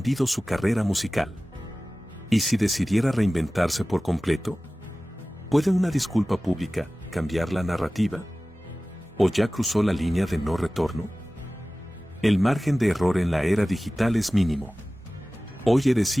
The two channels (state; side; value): normal; both; correlation 0.97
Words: su carrera musical. ¿Y si decidiera reinventarse por completo? ¿Puede una disculpa pública cambiar la narrativa? ¿O ya cruzó la línea de no retorno? El margen de error en la era digital es mínimo. Hoy eres